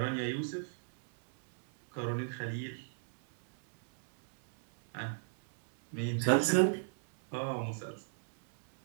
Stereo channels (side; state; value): left; silent; 55 dB below the other